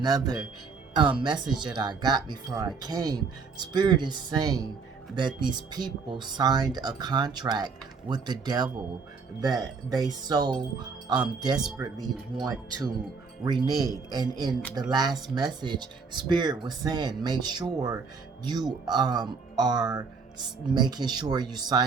message that I got before I came. Spirit is saying that these people signed a contract with the devil that they so desperately want to renege. And in the last message, Spirit was saying, make sure you are making sure you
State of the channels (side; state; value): left; quieter; 4.9 dB